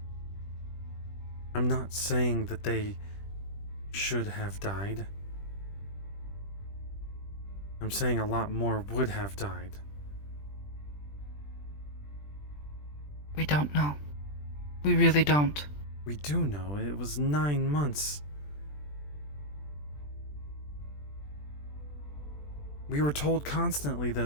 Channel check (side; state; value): right; late; 20 ms